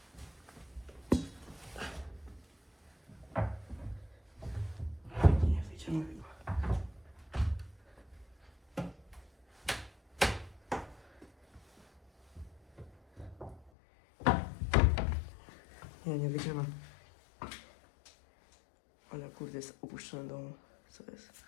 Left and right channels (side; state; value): right; drops out; at 13.7 s